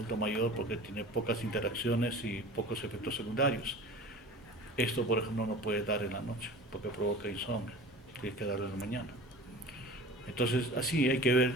mayor porque tiene pocas interacciones y pocos efectos secundarios. Esto, por ejemplo, no puede dar en la noche porque provoca insomnio, tiene que darlo en la mañana. Entonces, así hay que ver,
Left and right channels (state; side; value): normal; both; correlation 0.39